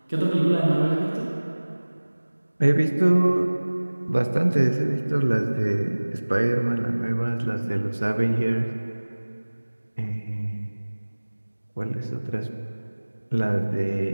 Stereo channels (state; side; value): inverted; both; correlation -1.00